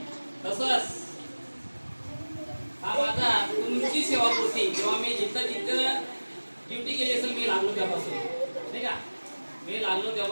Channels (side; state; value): both; inverted; correlation -1.00